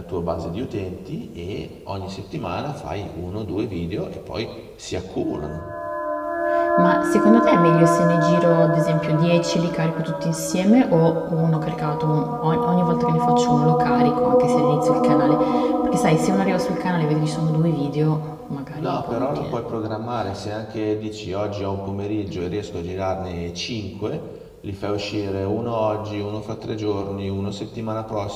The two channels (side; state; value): both; identical; correlation 1.00